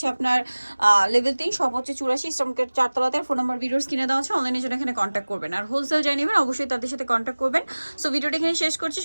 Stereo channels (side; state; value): both; inverted; correlation -1.00